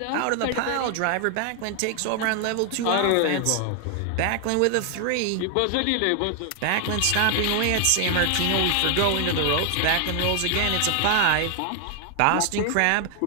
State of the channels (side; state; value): both; different; correlation 0.00